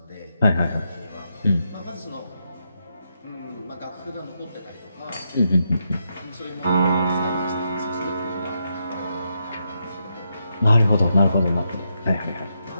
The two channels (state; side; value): inverted; both; correlation -0.82